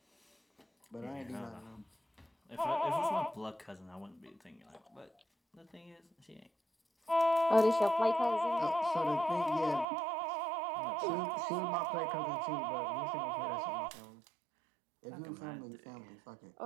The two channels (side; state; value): left; drops out; at 9.9 s